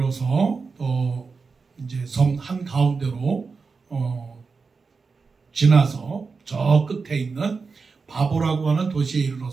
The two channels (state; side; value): quieter; left; 4.7 dB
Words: 또 이제 섬 한 가운데로 지나서 저 끝에 있는 바보라고 하는 도시에